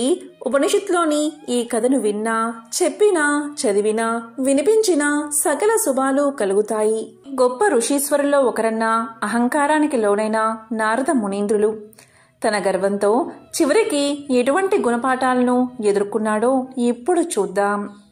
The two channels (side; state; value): both; identical; correlation 1.00